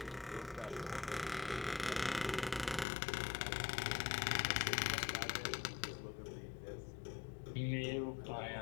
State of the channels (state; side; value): drops out; right; at 2.9 s